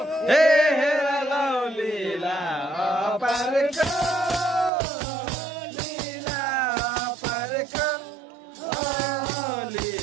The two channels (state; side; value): drops out; left; at 4.7 s